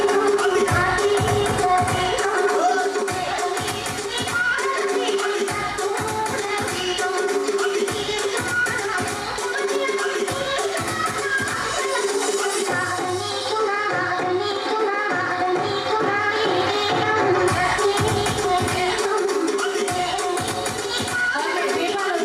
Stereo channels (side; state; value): both; identical; correlation 1.00